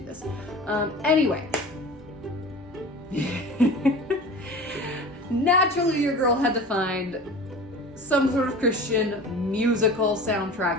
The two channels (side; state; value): both; normal; correlation 0.37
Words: Anyway. Naturally, your girl had to find some sort of Christian musical